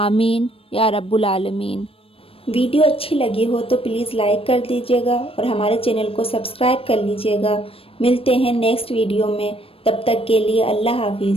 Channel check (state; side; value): late; right; 0.27 ms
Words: یا رب العالمین۔ ویڈیو اچھی لگی ہو تو پلیز لائک کر دیجیے گا اور ہمارے چینل کو سبسکرائب کر لیجیے گا۔ ملتے ہیں نیکسٹ ویڈیو میں، تب تک کے لیے اللہ